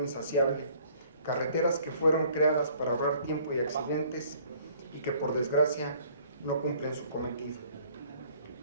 insaciable, carreteras que fueron creadas para ahorrar tiempo y accidentes y que por desgracia no cumplen su cometido.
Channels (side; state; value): both; inverted; correlation -0.58